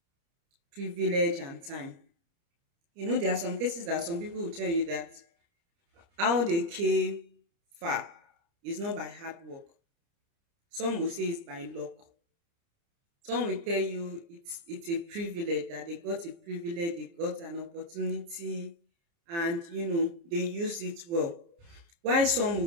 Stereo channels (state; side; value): late; left; 30 ms